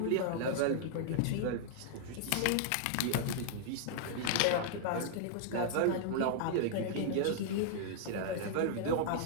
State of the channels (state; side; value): different; both; correlation -0.01